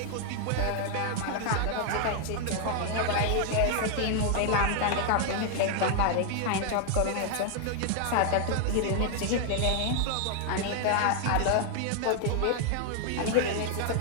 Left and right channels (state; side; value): different; both; correlation 0.00